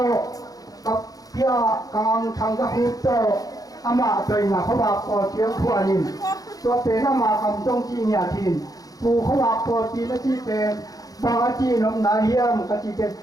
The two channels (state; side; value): late; right; 0.18 ms